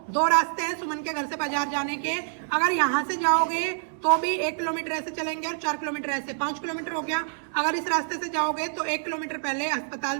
2 रास्ते हैं सुमन के घर से बाजार जाने के। अगर यहाँ से जाओगे तो भी 1 किलोमीटर ऐसे चलेंगे और 4 किलोमीटर ऐसे, 5 किलोमीटर हो गया। अगर इस रास्ते से जाओगे तो 1 किलोमीटर पहले अस्पताल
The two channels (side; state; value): left; silent; 60 dB below the other